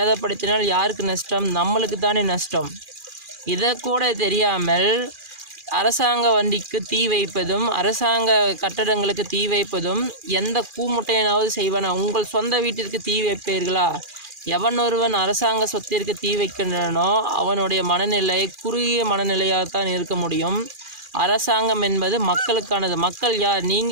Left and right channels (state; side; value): late; left; 2.4 ms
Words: யாருக்கு நஷ்டம்? நம்மளுக்கு தானே நஷ்டம். இதை கூட தெரியாமல் அரசாங்க வண்டிக்கு தீ வைப்பதும் அரசாங்க கட்டடங்களுக்கு தீ வைப்பதும் எந்த கூமுட்டையனாவது செய்வானா? உங்கள் சொந்த வீட்டிற்கு தீ வைப்பீர்களா? எவன் ஒருவன் அரசாங்க சொத்திற்கு தீ வைக்கின்றனோ அவனுடைய மனநிலை குறுகிய மனநிலையாகத்தான் இருக்க முடியும். அரசாங்கம் என்பது மக்களுக்கானது. மக்கள் யார்?